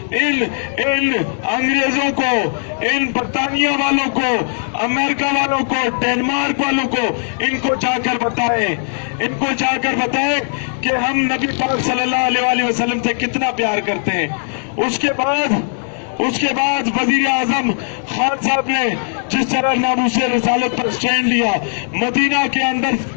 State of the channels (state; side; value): silent; right; digital silence